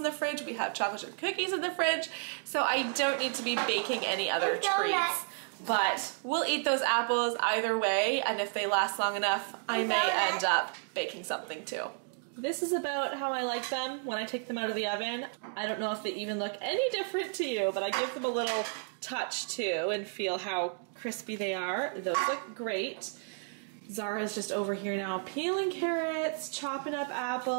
the fridge, we have chocolate chip cookies in the fridge. So I don't need to be baking any other treats. But we'll eat those apples either way, and if they last long enough, I may end up baking something too. This is about how I like them when I take them out of the oven. I don't know if they even look any different to you, but I give them a little touch too and feel how crispy they are. Those look great. Zara's just over here now peeling carrots, chopping up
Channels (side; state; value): left; silent; 56 dB below the other